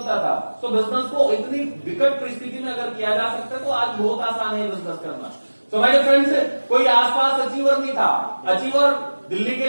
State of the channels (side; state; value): both; inverted; correlation -1.00